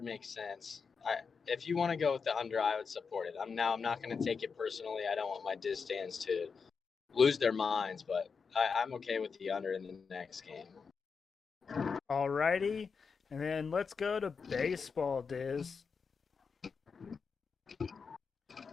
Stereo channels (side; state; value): right; quieter; 5.5 dB